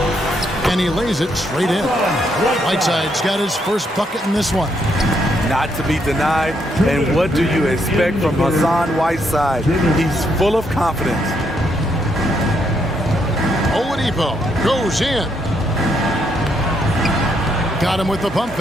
And he lays it straight in. Whiteside's got his first bucket in this one. Not to be denied. And what do you expect from Hassan Whiteside? He's full of confidence. Oladipo goes in. Got him with the pump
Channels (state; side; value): normal; both; correlation 0.75